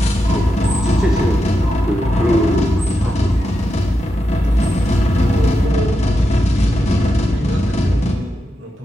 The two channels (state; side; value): normal; both; correlation 0.87